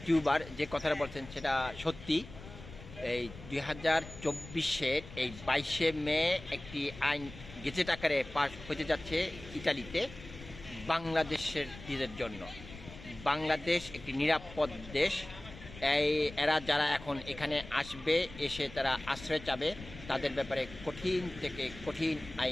টিউবার যে কথাটা বলছেন সেটা সত্যি। এই 2024-এর এই 22শে মে একটি আইন গেজেট আকারে পাস হতে যাচ্ছে ইতালিতে বাংলাদেশের জন্য। বাংলাদেশ একটি নিরাপদ দেশ। এরা যারা এখন এখানে আসবে, এসে তারা আশ্রয় চাবে, তাদের ব্যাপারে কঠিন থেকে কঠিন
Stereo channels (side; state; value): left; noise; rumble, 15 dB below the sound